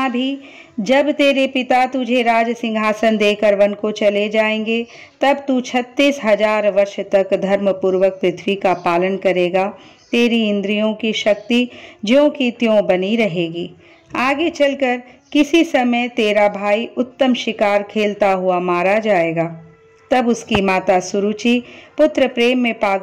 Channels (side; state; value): both; identical; correlation 1.00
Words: भी जब तेरे पिता तुझे राज सिंहासन देकर वन को चले जाएंगे, तब तू 36,000 वर्ष तक धर्म पूर्वक पृथ्वी का पालन करेगा। तेरी इंद्रियों की शक्ति ज्यों की त्यों बनी रहेगी। आगे चलकर किसी समय तेरा भाई उत्तम शिकार खेलता हुआ मारा जाएगा। तब उसकी माता सुरुचि पुत्र प्रेम में